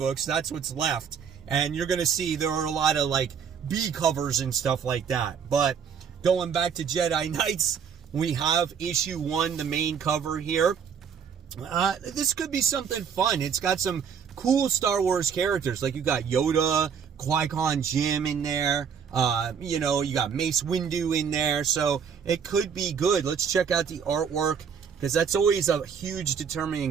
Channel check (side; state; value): left; quieter; 7.1 dB